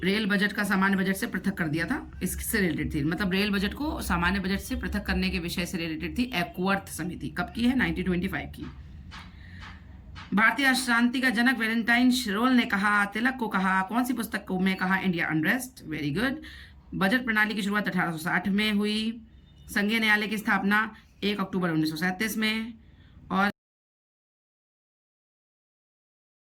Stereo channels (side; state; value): both; identical; correlation 1.00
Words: रेल बजट का सामान्य बजट से पृथक कर दिया था, इससे रिलेटेड थी, मतलब रेल बजट को सामान्य बजट से पृथक करने के विषय से रिलेटेड थी एकवर्थ समिति। कब की है? 1925 की। भारतीय अशांति का जनक वैलेंटाइन शिरोल ने कहा, तिलक को कहा, कौन सी पुस्तक को में कहा? India unrest. Very good. Budget प्रणाली की शुरुआत 1860 में हुई। संघीय न्यायालय की स्थापना 1 अक्टूबर 1937 में। और